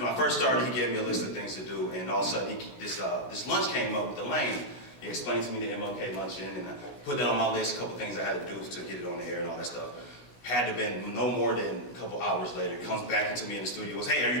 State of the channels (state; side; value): late; right; 16 ms